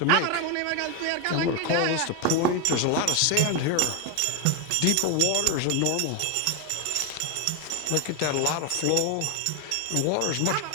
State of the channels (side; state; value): both; different; correlation 0.02